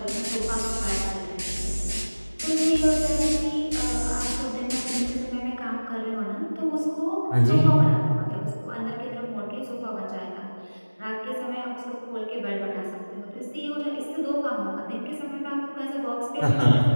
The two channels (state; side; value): inverted; both; correlation -1.00